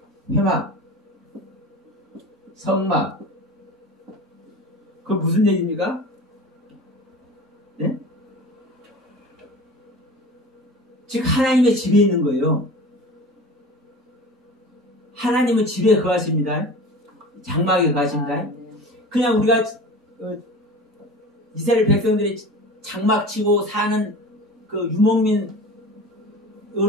회막, 성막. 그 무슨 얘기입니까? 예? 즉 하나님의 집에 있는 거예요. 하나님은 집에 거하십니다. 장막에 거하십니다. 그냥 우리가 이스라엘 백성들이 장막 치고 사는 그 유목민으로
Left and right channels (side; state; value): both; normal; correlation 0.36